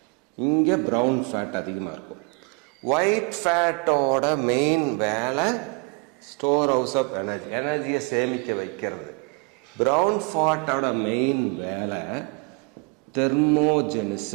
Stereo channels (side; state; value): left; quieter; 32.3 dB